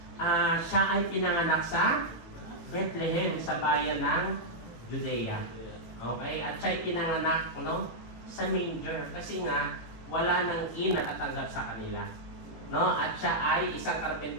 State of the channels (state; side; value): late; right; 18 ms